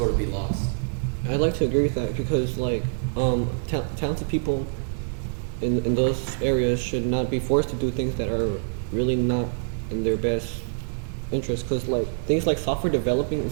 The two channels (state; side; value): silent; left; digital silence